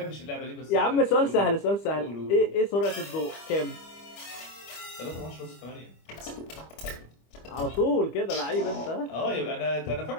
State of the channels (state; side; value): late; right; 25 ms